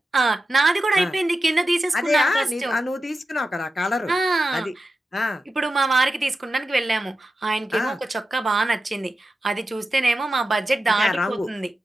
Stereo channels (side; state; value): both; normal; correlation 0.92